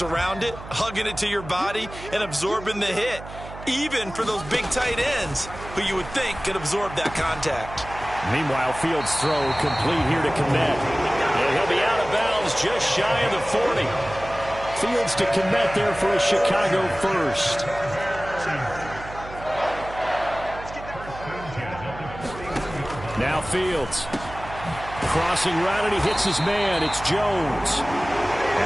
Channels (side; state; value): right; noise; hum, 14 dB below the sound